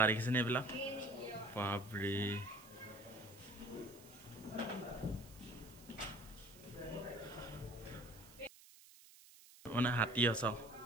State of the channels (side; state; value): right; noise; hiss, 21 dB below the sound